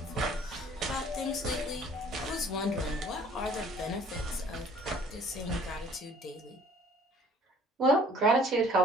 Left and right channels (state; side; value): normal; both; correlation 0.54